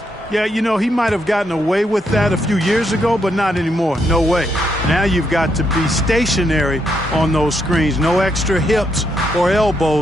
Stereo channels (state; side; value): normal; both; correlation 0.78